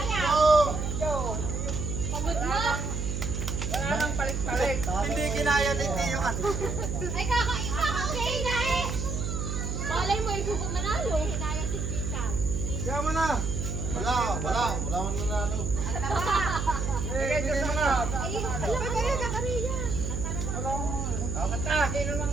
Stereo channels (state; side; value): noise; right; hum, 2 dB below the sound